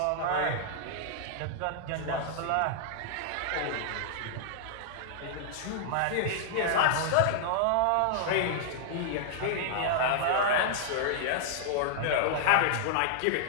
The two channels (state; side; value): different; both; correlation -0.01